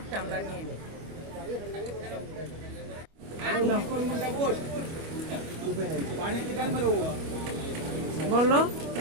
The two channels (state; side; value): late; left; 25 ms